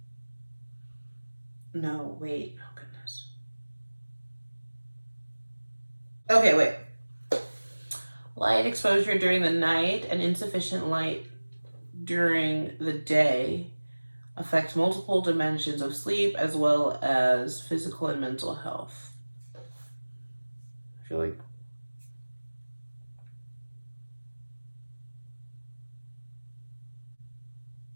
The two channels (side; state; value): both; inverted; correlation -1.00